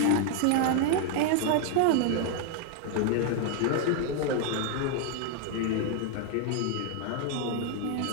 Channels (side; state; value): both; different; correlation 0.00